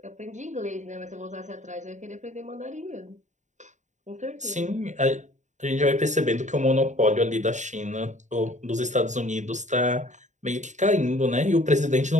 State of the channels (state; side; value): late; left; 0.35 ms